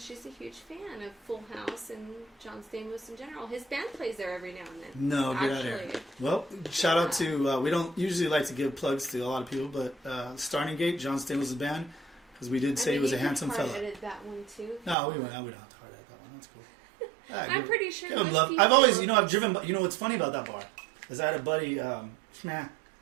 she's a huge fan of Full House and John Stamos in general. His band plays there every now and then. No, get out of here. Actually. Well, shout out to, we don't usually like to give plugs to a lot of people, but Starting Gate, John Stamos' band, because we did say he was a handsome fella. I edited that one too. No, we don't have to hard edit that one. That's cool. Yeah, I'm pretty sure give him most love. people- I've always, I've driven, what's funny about that bar is I had a buddy, and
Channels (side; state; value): left; drops out; at 15.0 s